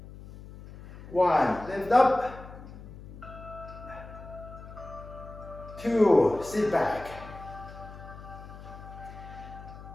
1. Lift up. 2. Sit back.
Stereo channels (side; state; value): left; noise; hum, 15 dB below the sound